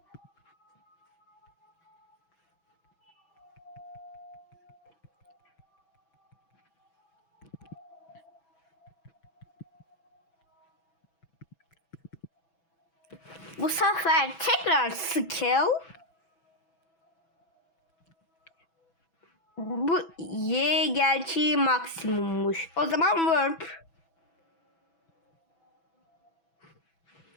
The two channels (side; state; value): right; late; 6.1 ms